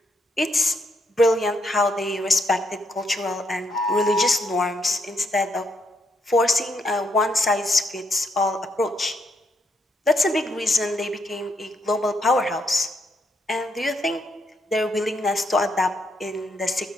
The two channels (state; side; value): normal; both; correlation 0.76